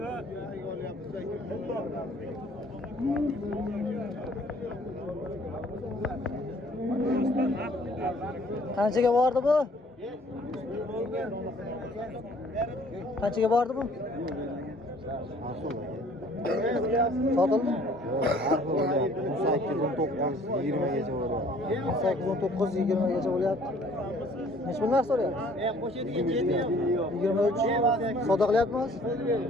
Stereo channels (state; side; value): normal; both; correlation 0.56